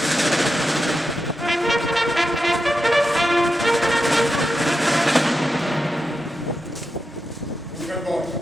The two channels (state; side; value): normal; both; correlation 0.88